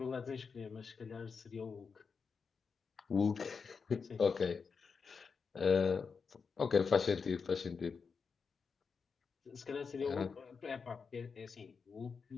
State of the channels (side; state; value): right; quieter; 5.5 dB